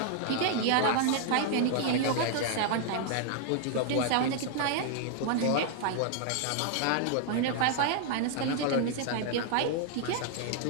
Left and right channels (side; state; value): both; different; correlation 0.00